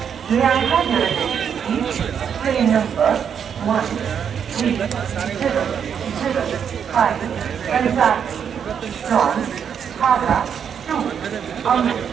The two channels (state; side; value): quieter; left; 7.8 dB